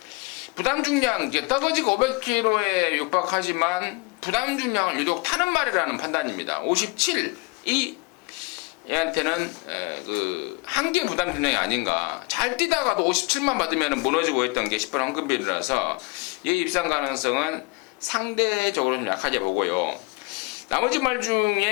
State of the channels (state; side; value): quieter; right; 28.1 dB